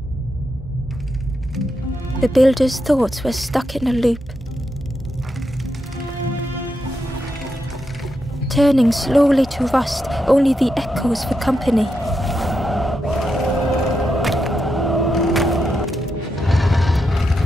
The builder's thoughts were stuck in a loop, turning slowly to rust, only the echoes for company.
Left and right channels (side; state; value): both; normal; correlation 0.84